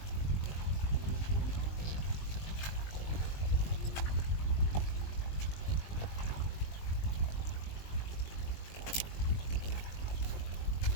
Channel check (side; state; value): right; late; 20 ms